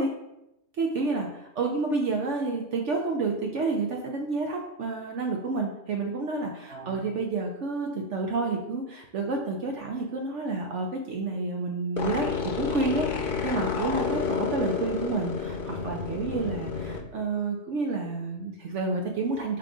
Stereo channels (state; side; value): late; left; 2.5 ms